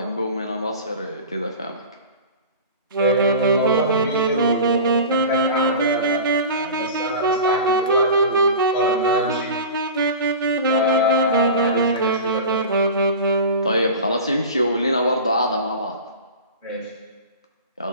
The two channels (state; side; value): inverted; both; correlation -0.33